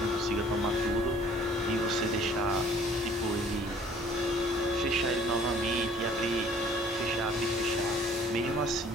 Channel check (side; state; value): both; normal; correlation 0.55